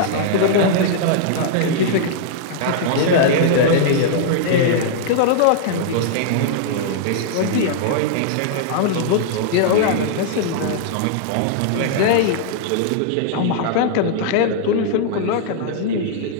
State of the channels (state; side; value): different; both; correlation -0.01